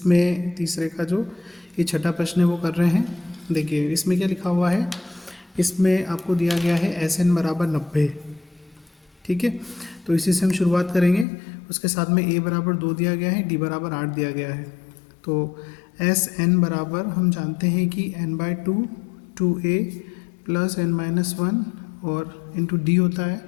तीसरे का जो ये छठा प्रश्न है वो कर रहे हैं। देखिए इसमें क्या लिखा हुआ है। इसमें आपको दिया गया है SN बराबर 90। ठीक है, तो इसी से हम शुरुआत करेंगे। उसके साथ में A बराबर 2 दिया गया है, D बराबर 8 दिया गया है। तो SN बराबर हम जानते हैं कि n/2 2A प्लस n-1 और इंटू डी होता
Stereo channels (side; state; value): right; drops out; at 11.2 s